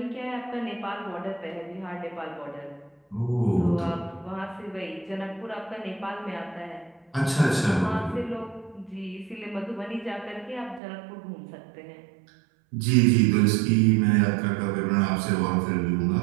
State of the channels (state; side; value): drops out; left; at 10.8 s